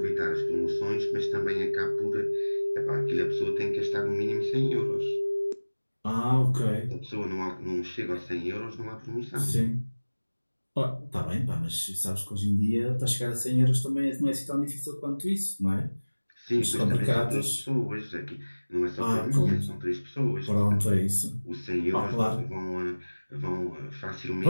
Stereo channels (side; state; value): both; inverted; correlation -1.00